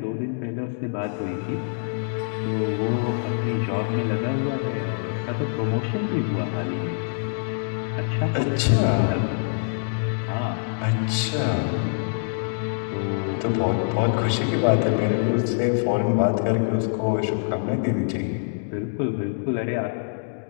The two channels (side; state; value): right; silent; digital silence